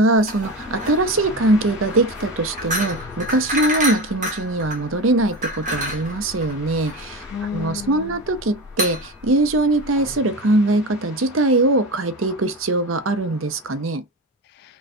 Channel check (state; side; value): normal; both; correlation 0.24